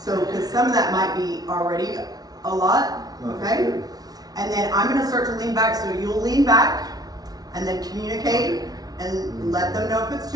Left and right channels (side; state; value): left; late; 0.19 ms